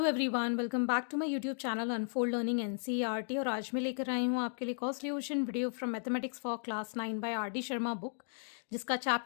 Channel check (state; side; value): silent; right; digital silence